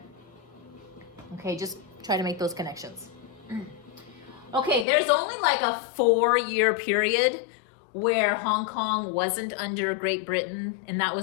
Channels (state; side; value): drops out; right; at 4.9 s